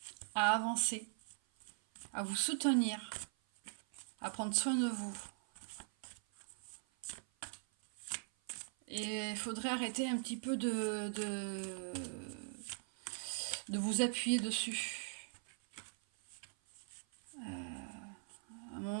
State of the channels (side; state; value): left; silent; 50 dB below the other